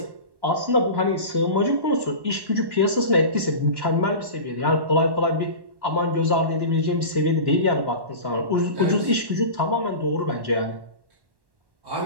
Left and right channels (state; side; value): late; left; 1.1 ms